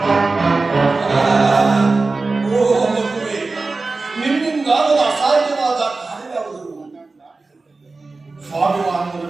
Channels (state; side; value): quieter; left; 3.7 dB